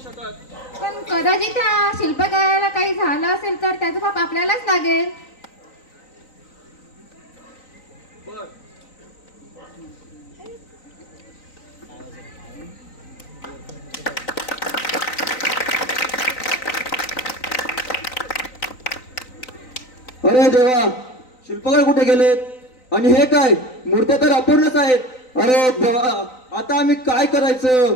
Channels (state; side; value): late; right; 3.9 ms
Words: शकत. पण कदाचित त्या शिल्पकाराला काही झालं असेल तर त्याचं पाप आपल्यालाच लागेल. बर. अरे देवा, शिल्पकार कुठे गेलेत? आणि हे काय, मूर्त्या तर अपूर्णच आहेत. अरे देवा, आता आम्ही काय करायचं?